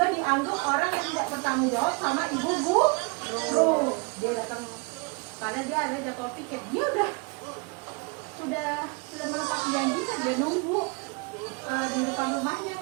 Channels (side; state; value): left; quieter; 31.0 dB